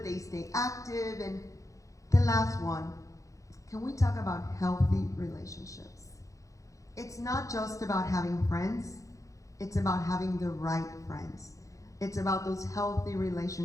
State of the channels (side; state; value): right; late; 0.16 ms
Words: they stay active, and the last one, can we talk about healthy relationships? It's not just about having friends, it's about having the right friends. It's about those healthy